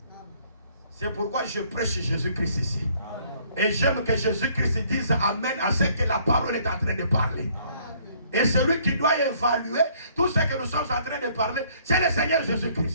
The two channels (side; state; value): both; inverted; correlation -0.62